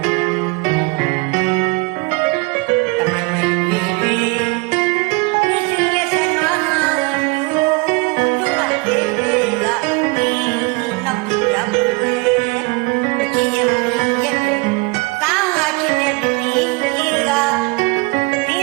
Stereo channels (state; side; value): quieter; left; 28.1 dB